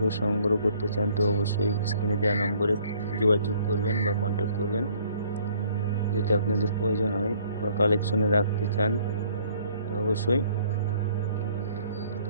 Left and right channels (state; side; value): inverted; both; correlation -0.59